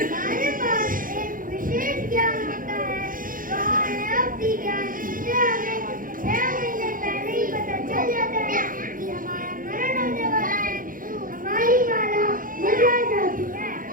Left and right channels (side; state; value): left; late; 0.40 ms